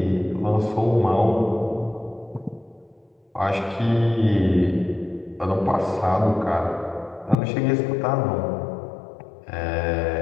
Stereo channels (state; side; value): drops out; right; at 7.4 s